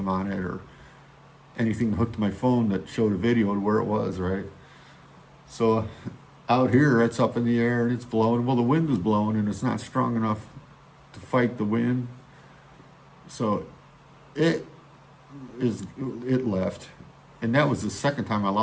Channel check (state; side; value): identical; both; correlation 1.00